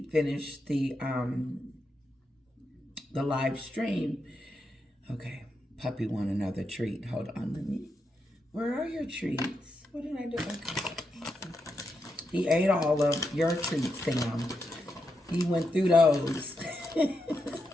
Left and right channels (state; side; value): normal; both; correlation 0.84